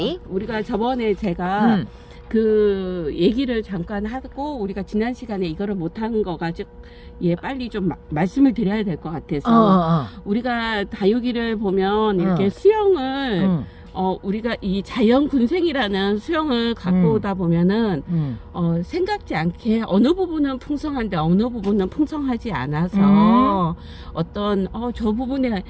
우리가 저번에 제가 그 얘기를 잠깐 하고 우리가 지난 시간에 이거를 못한 거 가지고 빨리 좀 말씀을 드려야 될 것 같아서 우리가 다육이를 보면 이렇게 수영을 우리가 이 자연 군생이라는 수영을 갖고 오다 보면은 생각지 않게 어느 부분은 풍성한데 어느 부분은 풍성하지 않아서 어떤 저 부분에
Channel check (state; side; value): identical; both; correlation 1.00